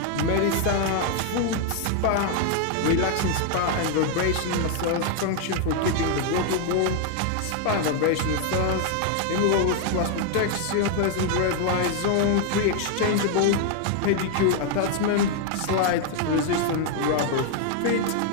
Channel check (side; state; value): both; different; correlation 0.00